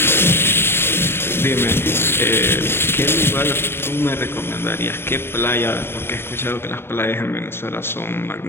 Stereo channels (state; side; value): late; right; 0.11 ms